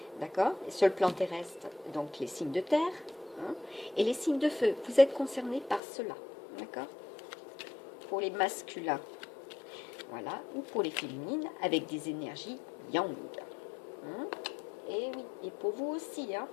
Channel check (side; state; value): right; drops out; at 5.8 s